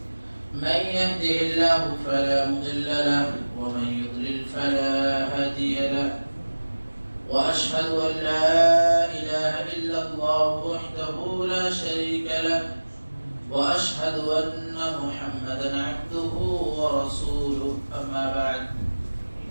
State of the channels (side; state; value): both; inverted; correlation -1.00